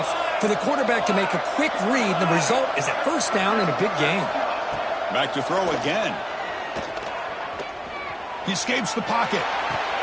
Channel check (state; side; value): identical; both; correlation 1.00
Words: for the quarterback to make a quick read. The result is a 1st down in a big game. Back to throw again. He escapes the pocket.